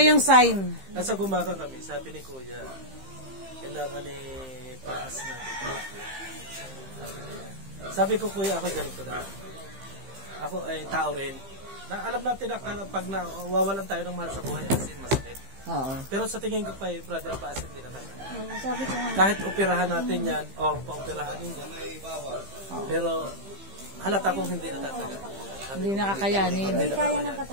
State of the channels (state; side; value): late; left; 15 ms